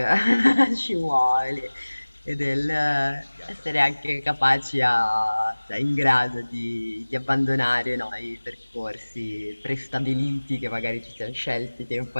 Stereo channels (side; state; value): both; inverted; correlation -1.00